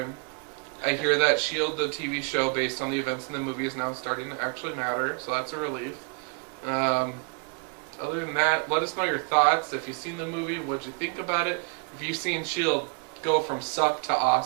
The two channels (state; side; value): quieter; left; 36.6 dB